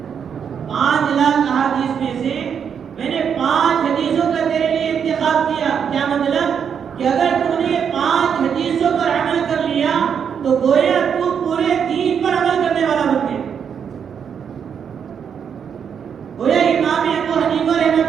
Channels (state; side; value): quieter; left; 7.5 dB